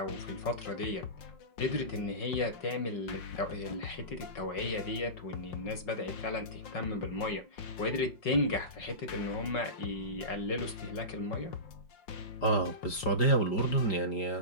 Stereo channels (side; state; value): right; late; 5.0 ms